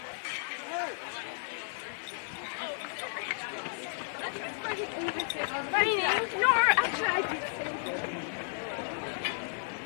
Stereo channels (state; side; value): silent; right; 56 dB below the other